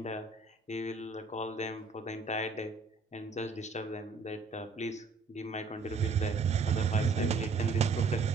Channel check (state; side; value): quieter; left; 4.2 dB